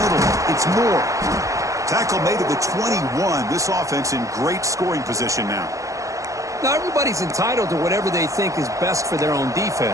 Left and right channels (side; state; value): left; late; 0.16 ms